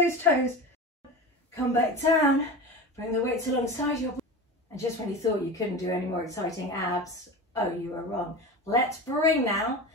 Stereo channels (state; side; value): normal; both; correlation 0.28